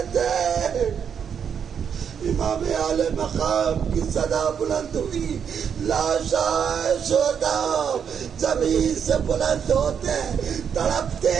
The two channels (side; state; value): left; quieter; 7.5 dB